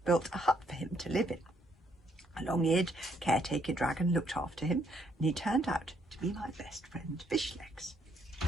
built a hut for him to live in. A long-eared caretaker dragon looked after him, and he turned out to be my best friend Fishlegs.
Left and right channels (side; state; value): both; normal; correlation 0.71